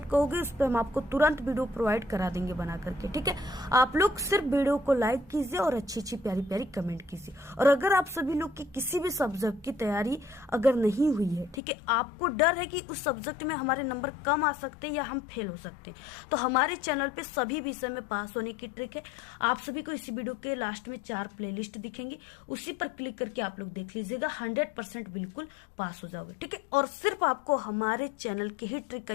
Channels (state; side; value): drops out; right; at 11.6 s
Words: कहोगे उस पर हम आपको तुरंत वीडियो प्रोवाइड करा देंगे बना करके। ठीक है, आप लोग सिर्फ वीडियो को लाइक कीजिए और अच्छी अच्छी प्यारी प्यारी कमेंट कीजिए। और अगर आप सभी लोग की किसी भी सब्जेक्ट की तैयारी अगर नहीं हुई है, ठीक है, आपको डर है कि उस सब्जेक्ट में हमारे नंबर कम आ सकते हैं या हम फेल हो सकते हैं, तो हमारे चैनल पे सभी विषय में पास होने की ट्रिक है। आप सभी को इसी वीडियो के लास्ट में 4 प्लेलिस्ट दिखेंगे, उसी पर क्लिक करके आप लोग देख लीजिएगा, 100% बिल्कुल पास हो जाओगे। ठीक है, और सिर्फ आपको हमारे चैनल के ही ट्रिक का